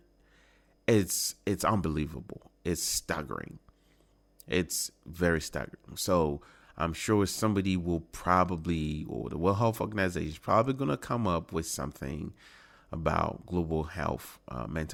it's unbelievable. It's staggering. It's very staggering. So I'm sure somebody will probably, or the World Health Organization is probably going to come up with something about global health,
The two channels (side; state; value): both; identical; correlation 1.00